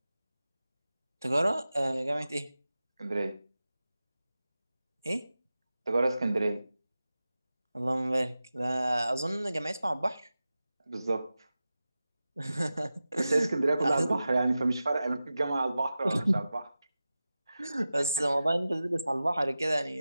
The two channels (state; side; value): inverted; both; correlation -0.94